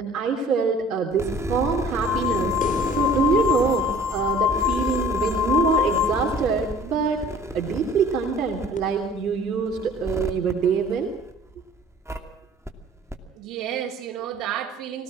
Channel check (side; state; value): both; normal; correlation 0.50